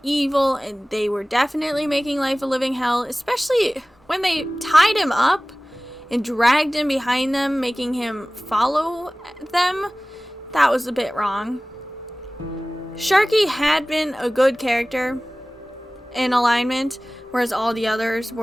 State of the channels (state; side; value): normal; both; correlation 0.98